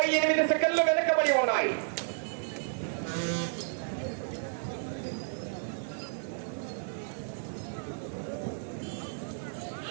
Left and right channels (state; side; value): silent; left; 56 dB below the other